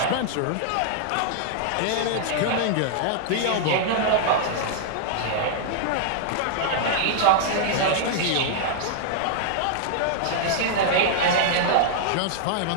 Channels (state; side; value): different; both; correlation -0.01